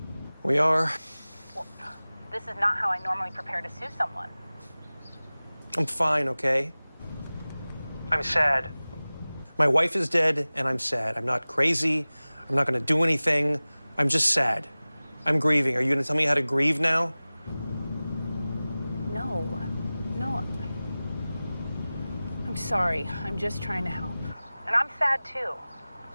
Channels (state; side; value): inverted; both; correlation -0.98